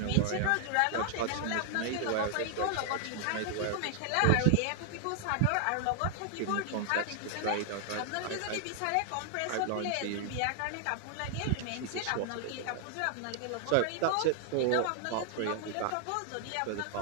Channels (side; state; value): both; different; correlation 0.00